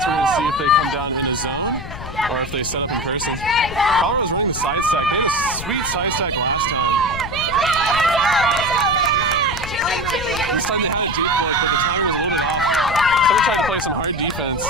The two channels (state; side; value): noise; left; rumble, 10 dB below the sound